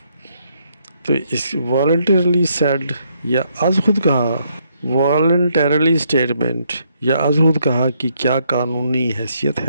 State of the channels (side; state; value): both; inverted; correlation -0.73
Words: تو اس والنٹیرلی سیڈ یا از خود کہا، والنٹیرلی اسٹیٹمنٹ یا از خود کہا کی کیا قانونی حیثیت